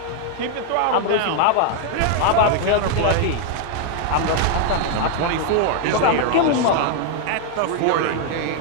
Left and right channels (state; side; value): different; both; correlation 0.00